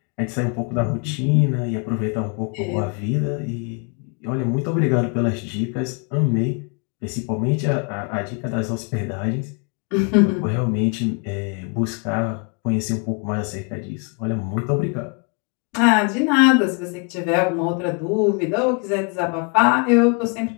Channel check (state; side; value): quieter; right; 35.5 dB